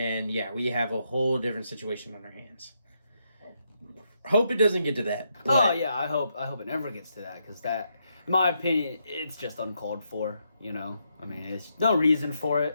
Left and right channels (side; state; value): both; inverted; correlation -0.79